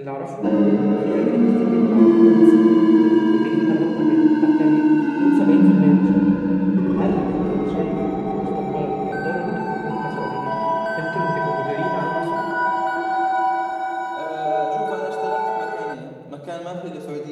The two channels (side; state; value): both; identical; correlation 1.00